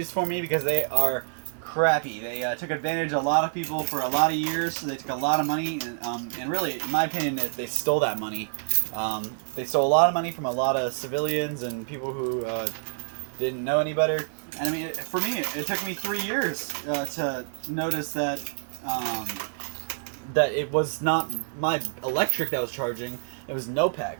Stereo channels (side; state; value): left; silent; digital silence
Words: for me, because they are crappy. They took advantage of a lot of people for a lot of years, so they took a lot of money, and really, in my opinion, they stole that money. They stole a lot of money from a lot of civilians and people who didn't know any better. And I mean, for me, it took me 3 years to notice that that it was not my electric that was charging, it was